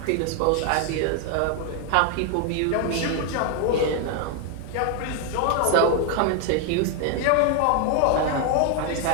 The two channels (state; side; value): different; both; correlation 0.01